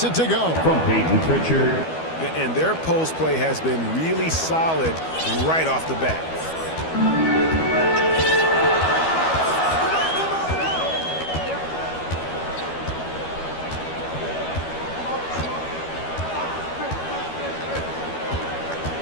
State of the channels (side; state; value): right; late; 12 ms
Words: it to go. From Peyton Pritchard. And their post play has been really solid right off the bat.